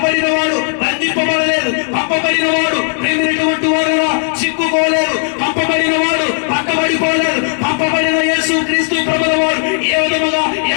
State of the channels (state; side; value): silent; right; digital silence